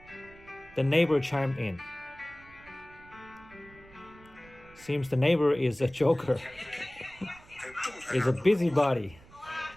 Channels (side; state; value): right; noise; rumble, 23 dB below the sound